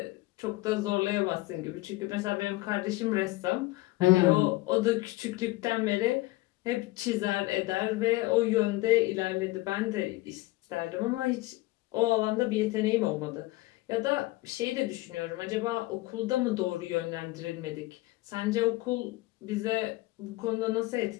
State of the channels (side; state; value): right; quieter; 19.6 dB